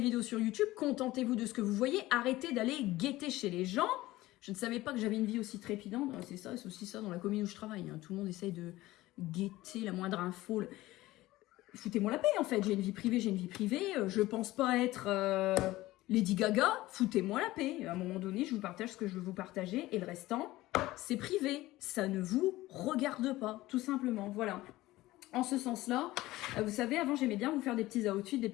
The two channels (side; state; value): right; quieter; 17.6 dB